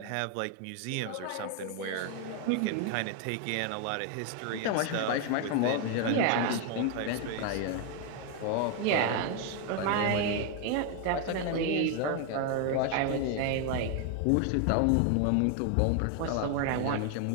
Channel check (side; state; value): both; different; correlation 0.01